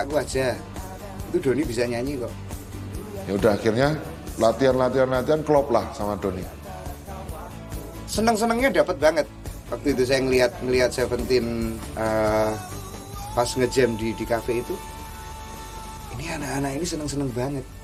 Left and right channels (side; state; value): both; identical; correlation 1.00